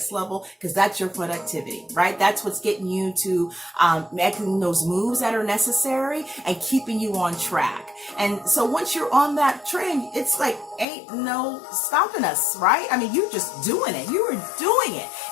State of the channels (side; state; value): right; drops out; at 10.9 s